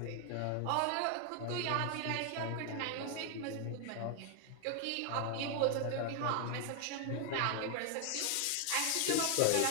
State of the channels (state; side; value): different; both; correlation 0.00